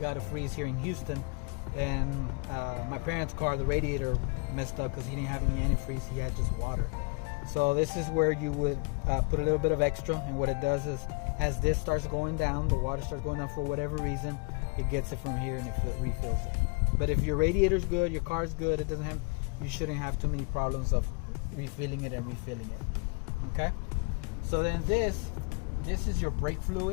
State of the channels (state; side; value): quieter; right; 31.7 dB